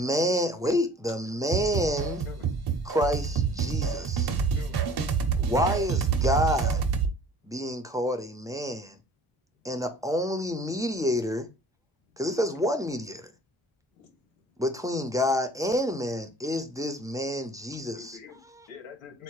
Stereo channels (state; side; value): normal; both; correlation 0.49